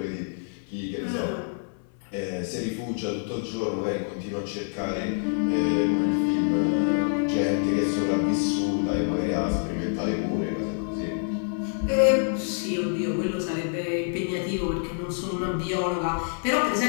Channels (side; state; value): right; silent; 56 dB below the other